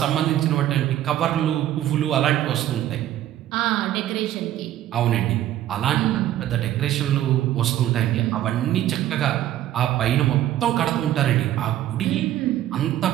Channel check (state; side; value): quieter; left; 12.7 dB